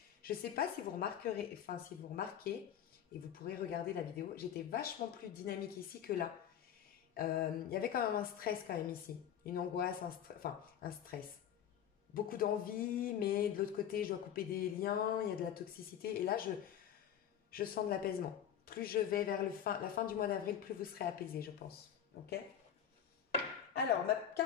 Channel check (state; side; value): quieter; right; 9.5 dB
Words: Je ne sais pas si vous remarquerez, si vous remarquez, et vous pourrez regarder la vidéo, j'étais vachement plus dynamique ici que là. Il y avait quand même un stress quand même ici. Une angoisse, un stress. Beaucoup d'envie, mais de l'autre côté, je dois couper des liens, il y a de la toxicité. Et là, je sens de l'apaisement. Plus je vais vers la fin du mois d'avril, plus vous serez apaisé, je pense. Ok? Alors, ma